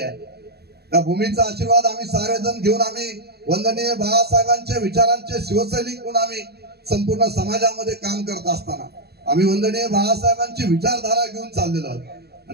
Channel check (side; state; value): left; late; 0.47 ms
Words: त्या भूमीचा आशीर्वाद आम्ही सारेजण घेऊन आम्ही वंदनीय बाळासाहेबांच्या विचारांचे शिवसैनिक म्हणून आम्ही संपूर्ण समाजामध्ये काम करत असताना आम्ही वंदनीय बाळासाहेबांची विचारधारा घेऊन चाललेलो आहोत।